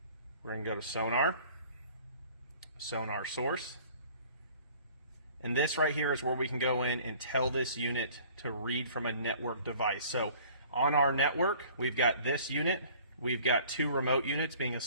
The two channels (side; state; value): both; inverted; correlation -0.51